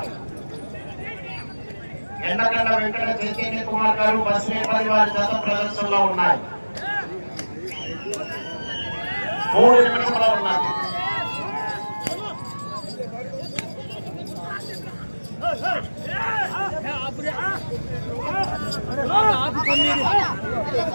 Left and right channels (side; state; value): both; inverted; correlation -1.00